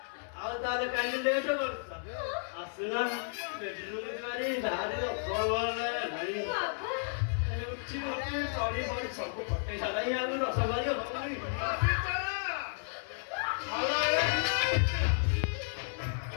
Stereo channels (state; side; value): silent; right; 56 dB below the other